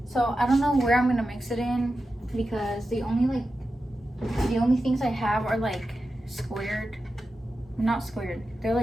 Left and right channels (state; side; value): normal; both; correlation 0.91